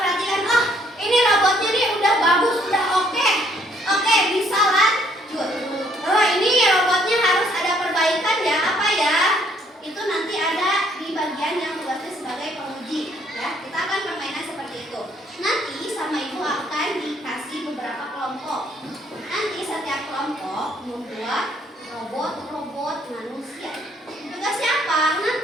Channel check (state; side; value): normal; both; correlation 0.66